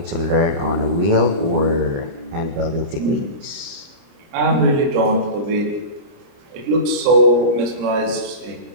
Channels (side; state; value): left; late; 30 ms